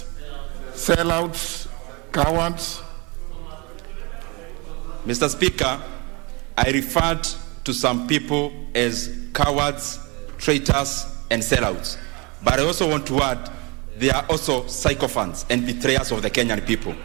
sellouts, cowards. Mr. Speaker, I referred to some people as cowards, traitors, and sellouts. But I also want to add, they are also sycophants and betrayers of the Kenyan people.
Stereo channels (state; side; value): quieter; left; 28.4 dB